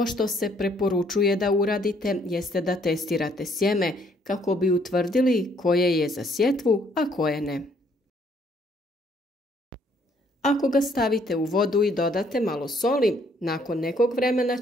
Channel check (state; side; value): normal; both; correlation 0.66